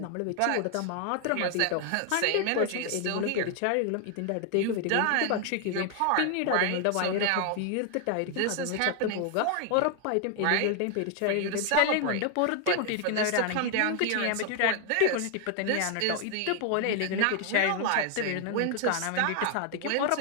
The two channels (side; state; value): both; different; correlation 0.00